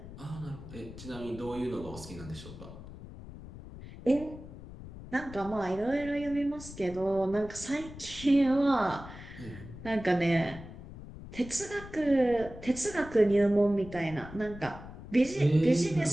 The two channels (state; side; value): noise; left; rumble, 14 dB below the sound